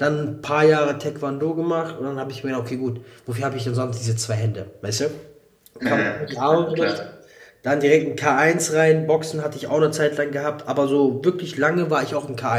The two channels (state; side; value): identical; both; correlation 1.00